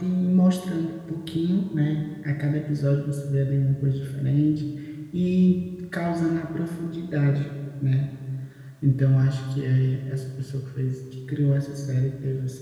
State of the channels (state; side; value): identical; both; correlation 1.00